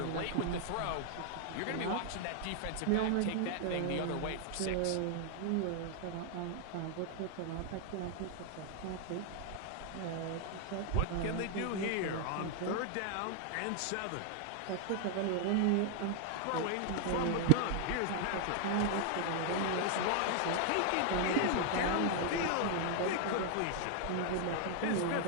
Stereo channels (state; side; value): different; both; correlation 0.00